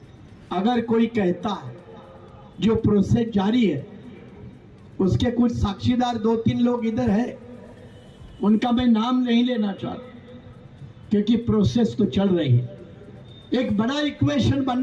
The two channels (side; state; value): both; identical; correlation 1.00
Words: अगर कोई कहता है जो प्रोसेस जारी है, उसके कुछ साक्षीदार 2-3 लोग इधर है, उनका मैं नाम नहीं लेना चाहता क्योंकि प्रोसेस तो चल रही है। एक बड़ा इक्वेशन